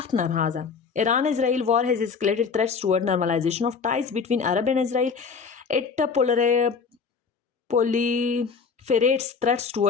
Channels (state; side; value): quieter; right; 5.5 dB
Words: नाराज़ है। Iran Israel war has escalated threats toward normalisation of ties between Arab and Israel. It proliferates threats